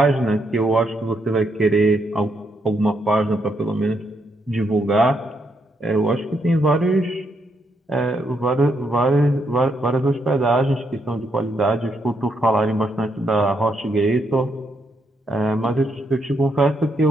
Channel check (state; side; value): normal; both; correlation 0.78